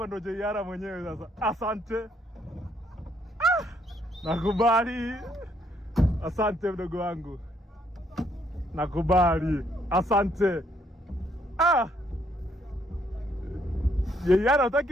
ndo Jeiara mwenyewe sasa. Asante. Nakubali. Asante mdogo wangu. Nakubali. Asante. Jeiara,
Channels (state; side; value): normal; both; correlation 0.70